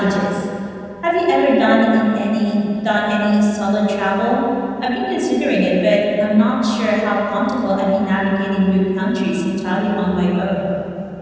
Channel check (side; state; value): both; identical; correlation 1.00